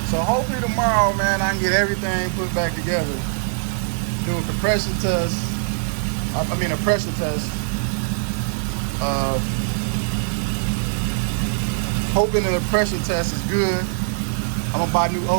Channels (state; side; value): silent; left; digital silence